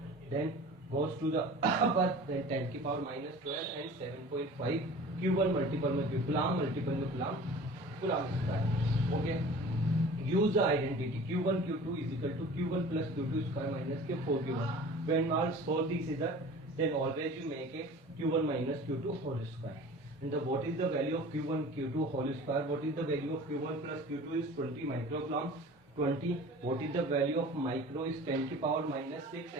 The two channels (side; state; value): both; normal; correlation 0.42